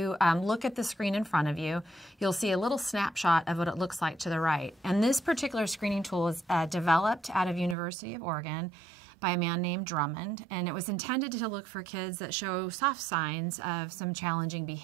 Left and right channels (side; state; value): left; drops out; at 7.8 s